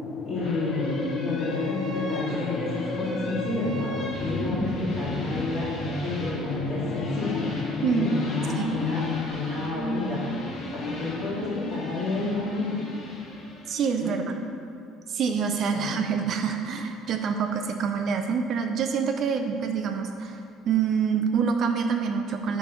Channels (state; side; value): normal; both; correlation 0.52